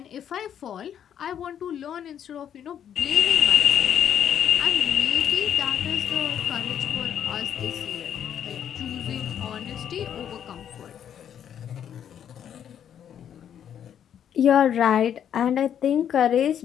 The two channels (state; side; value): quieter; right; 9.3 dB